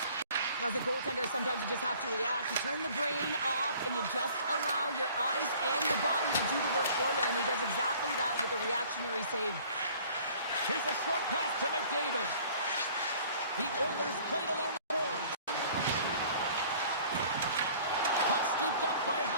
As a goaltender, sometimes you just have to react. You turn the brain off, and you just allow your eyes and your body to do the work for you, and he does exactly that with a reactionary save. Here's a short pass to McDavid. The Oilers played along the boards. Puck scooped up by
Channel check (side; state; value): both; inverted; correlation -0.52